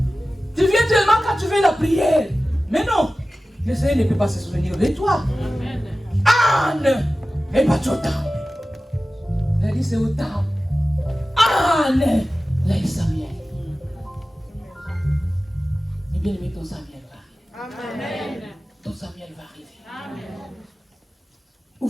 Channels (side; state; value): both; normal; correlation 0.95